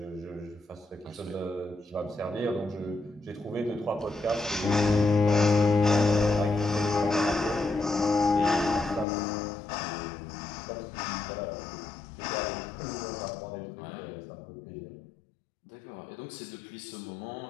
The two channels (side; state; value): right; drops out; at 9.1 s